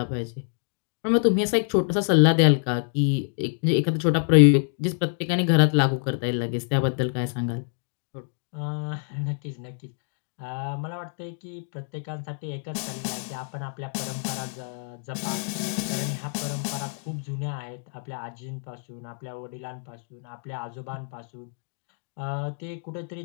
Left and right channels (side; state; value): right; silent; 60 dB below the other